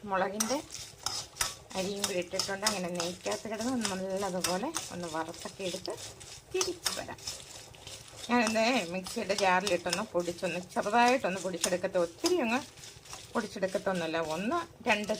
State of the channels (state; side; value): identical; both; correlation 1.00